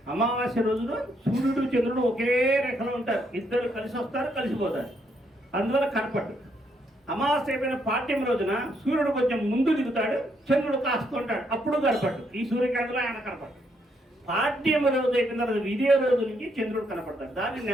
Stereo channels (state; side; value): normal; both; correlation 0.74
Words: అమావాస్య రోజున సూర్యుడు చంద్రుడు ఒకే రేఖలో ఉంటారు, ఇద్దరు కలిసి వస్తారు కలిసిపోతారు, అందువల్ల కనపట్టు. అమావాస్య అయిపోయిన పాడ్యమి రోజున సూర్యుడు కొంచెం ముందు దిగుతాడు, చంద్రుడు కాస్తుంటాడు, అప్పుడు కనపట్టు. ఈ సూర్యకాంతిలో ఆయన కనపట్టు. పాడ్యమి రోజు అయిపోయిన తర్వాత విజయ రోజు నుంచి చంద్రుడు కనపడతాడు, దాన్ని